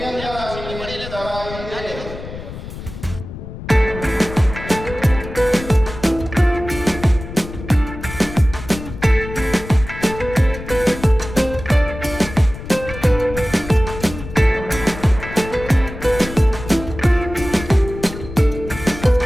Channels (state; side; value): noise; left; rumble, 11 dB below the sound